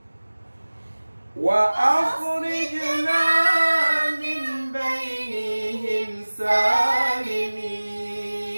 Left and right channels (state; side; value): inverted; both; correlation -1.00